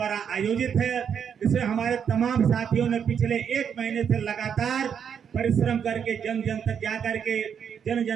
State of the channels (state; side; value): quieter; left; 7.7 dB